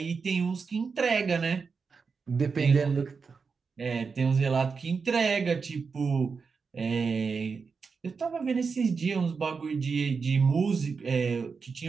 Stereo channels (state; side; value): quieter; left; 5.2 dB